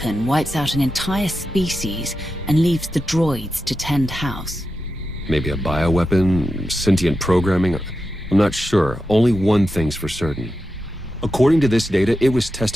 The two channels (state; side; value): normal; both; correlation 0.90